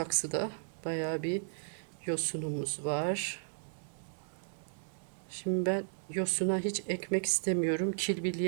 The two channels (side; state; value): left; silent; digital silence